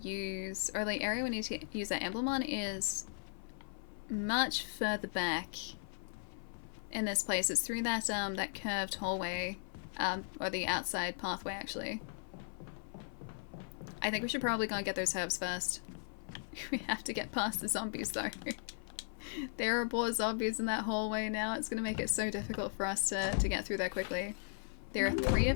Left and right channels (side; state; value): right; silent; 53 dB below the other